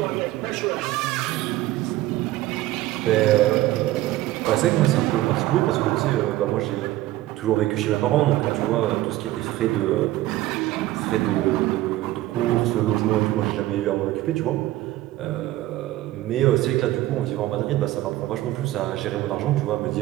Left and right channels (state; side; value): quieter; left; 16.0 dB